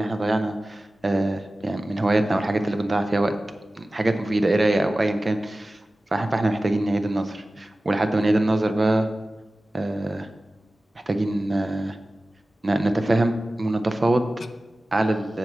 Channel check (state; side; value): normal; both; correlation 0.96